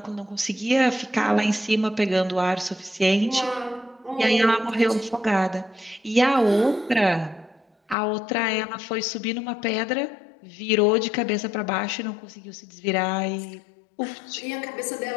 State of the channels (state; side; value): drops out; right; at 8.0 s